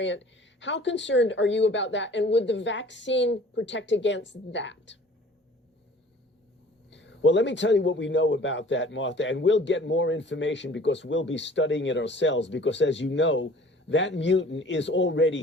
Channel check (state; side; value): normal; both; correlation 0.49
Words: How concerned are you about that? And would the vaccine protect against that? Well, let me tell you what we know about that, Martha, and we'll get more information because we'll be studying it ourselves, because as you know, that mutant is